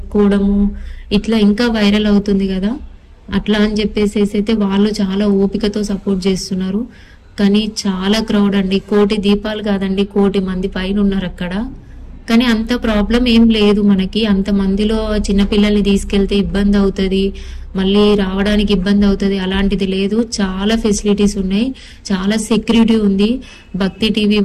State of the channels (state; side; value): identical; both; correlation 1.00